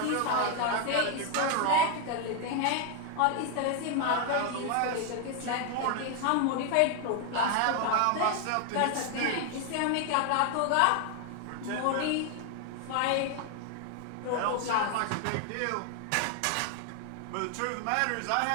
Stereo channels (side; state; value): both; different; correlation 0.01